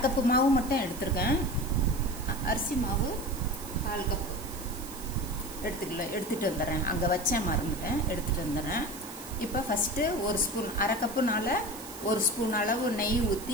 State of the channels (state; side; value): noise; right; hiss, 14 dB below the sound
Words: கப்பு மாவு மட்டும் எடுத்திருக்கேன். அரிசி மாவு 1/4 கப் எடுத்துட்டு வந்துடுறேன். அங்கே வச்சேன், மறந்துட்டேன், எடுத்துட்டு வந்துடுறேன். இப்போ ஃபஸ்ட்டு 1 ஸ்பூன், அரை கப்புனால 1 ஸ்பூன் அளவு நெய்